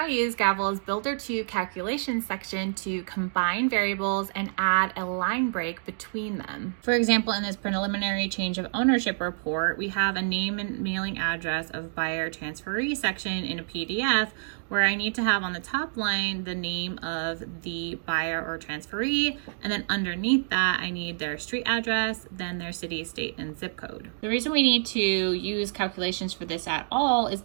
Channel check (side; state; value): left; silent; digital silence